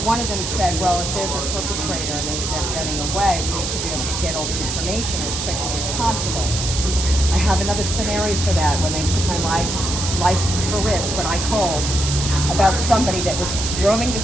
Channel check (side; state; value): right; noise; hiss, 3 dB below the sound